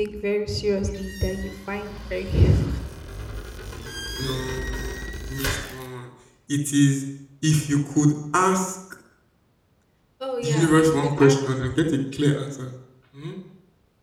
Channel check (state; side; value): identical; both; correlation 1.00